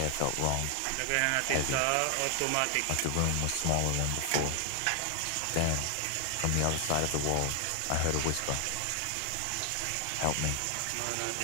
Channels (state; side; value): different; both; correlation 0.00